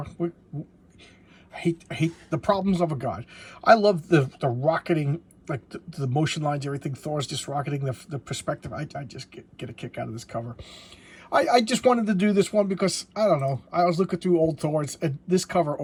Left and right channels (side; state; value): both; identical; correlation 1.00